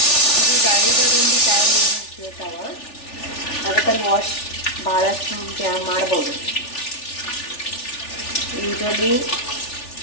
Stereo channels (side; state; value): right; late; 3.4 ms